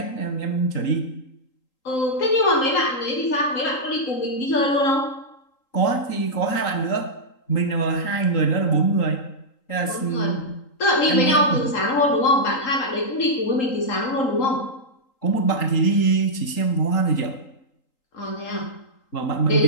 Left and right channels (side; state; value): right; late; 3.8 ms